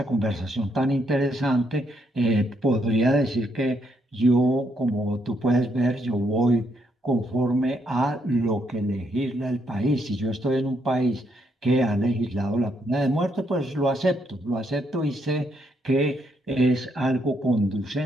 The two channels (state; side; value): normal; both; correlation 0.75